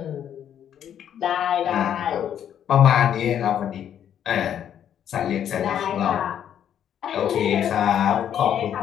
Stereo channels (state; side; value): quieter; right; 9.7 dB